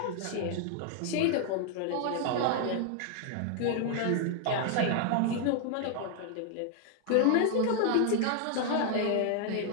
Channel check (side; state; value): both; different; correlation 0.00